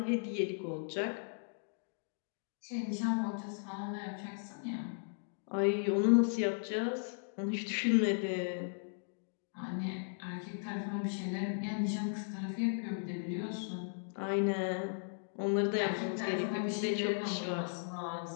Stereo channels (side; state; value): right; silent; digital silence